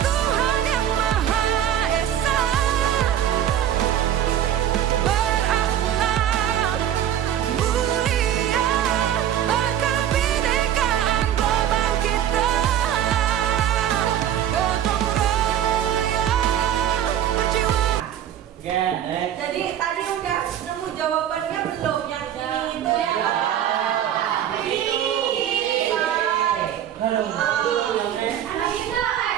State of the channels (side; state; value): left; quieter; 10.6 dB